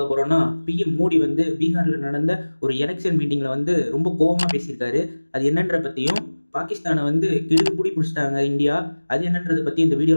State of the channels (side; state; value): both; inverted; correlation -1.00